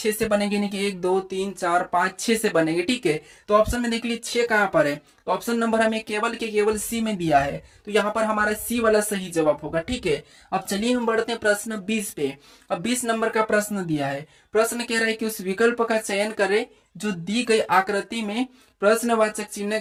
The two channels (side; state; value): both; identical; correlation 1.00